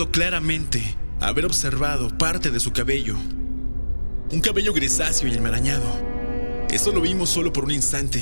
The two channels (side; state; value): both; inverted; correlation -1.00